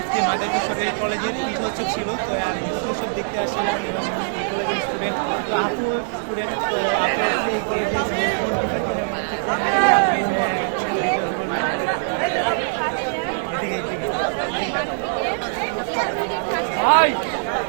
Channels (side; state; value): left; silent; 60 dB below the other